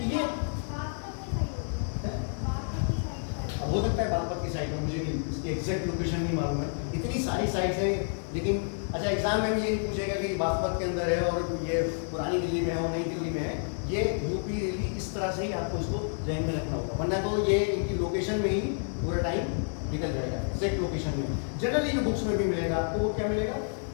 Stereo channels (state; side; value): silent; right; 58 dB below the other